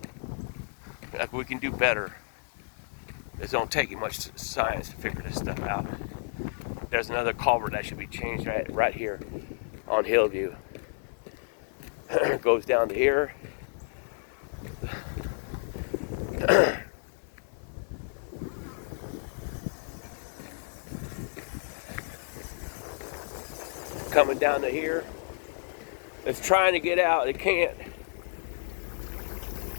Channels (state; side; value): silent; right; 57 dB below the other